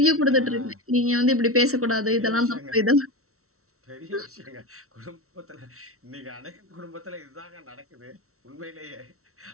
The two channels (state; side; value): late; left; 0.63 ms